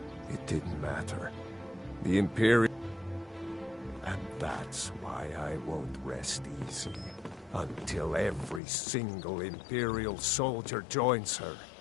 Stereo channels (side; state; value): right; drops out; at 8.6 s